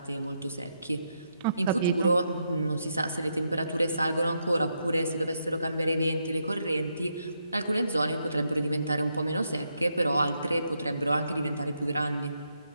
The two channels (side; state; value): both; inverted; correlation -0.80